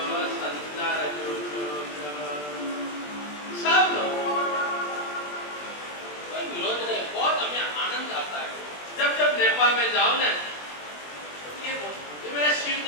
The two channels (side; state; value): right; late; 20 ms